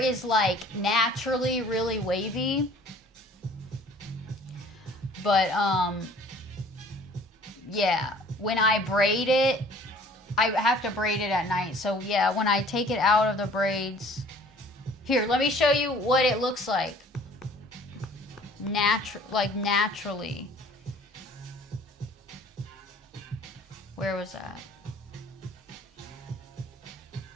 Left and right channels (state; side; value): normal; both; correlation 0.52